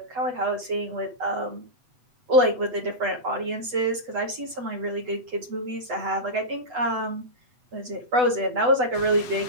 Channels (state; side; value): late; left; 8.0 ms